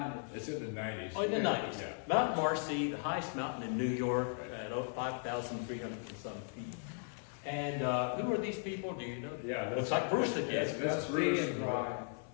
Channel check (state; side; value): silent; right; 53 dB below the other